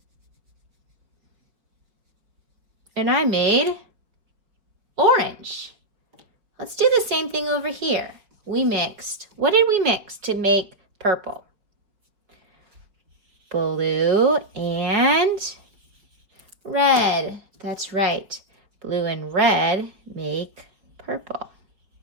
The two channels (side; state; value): left; late; 4.9 ms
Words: And I made orange. Let's do the same thing over here. What did we mix to make purple? Blue and red. That's right. Blue and red make purple.